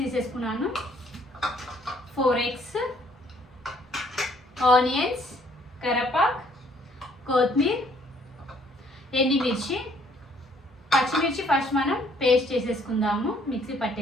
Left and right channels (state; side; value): normal; both; correlation 0.63